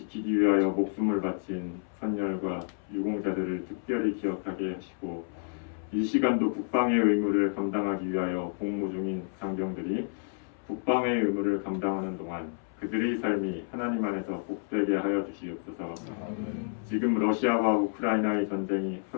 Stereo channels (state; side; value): silent; right; 58 dB below the other